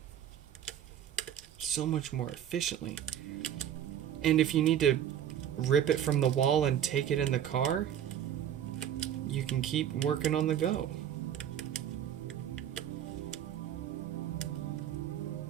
So much more efficiently. And if you need to rip it from the wall and take it in the car, you can keep working on the go.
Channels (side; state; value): left; quieter; 10.0 dB